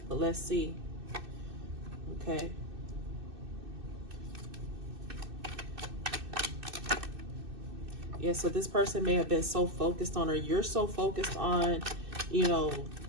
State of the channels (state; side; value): late; left; 2.6 ms